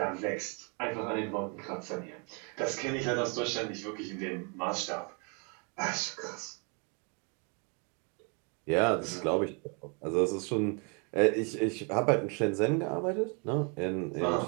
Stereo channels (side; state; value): left; quieter; 35.8 dB